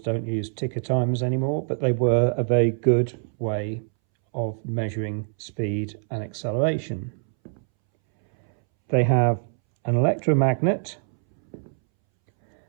use ticker timers anymore, but they were a very good way of measuring speed and acceleration. They have an electromagnet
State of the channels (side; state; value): left; silent; 62 dB below the other